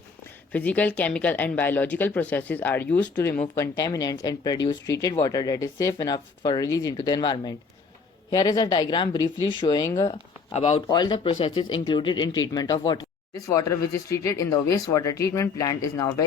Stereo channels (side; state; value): right; quieter; 4.8 dB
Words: Physical, chemical and biological processes are used to remove contaminants and produce treated water that is safe enough for release into the environment. Here is a diagram briefly showing about all the processes included in treatment of water. This water which is treated in the wastewater treatment plant is now